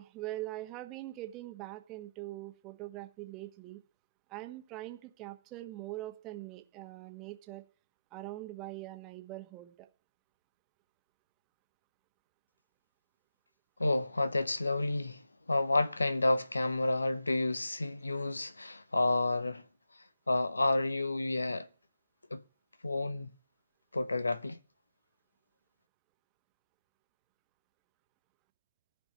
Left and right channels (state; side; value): inverted; both; correlation -0.89